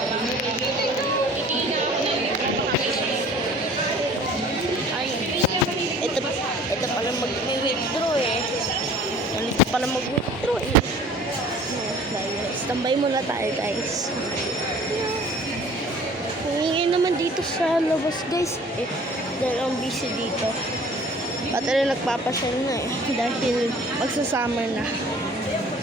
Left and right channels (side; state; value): both; normal; correlation 0.49